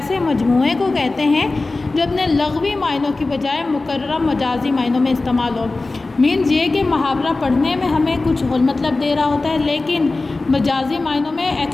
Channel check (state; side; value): quieter; right; 3.3 dB